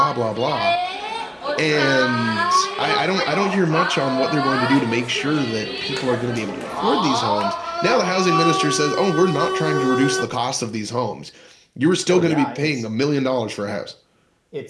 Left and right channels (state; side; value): identical; both; correlation 1.00